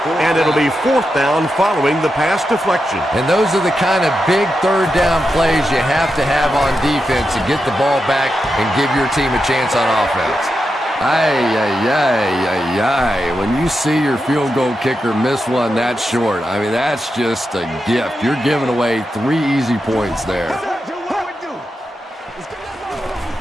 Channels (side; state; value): both; normal; correlation 0.88